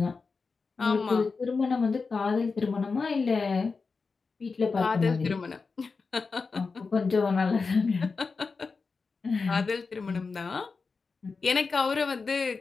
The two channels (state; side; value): quieter; right; 4.6 dB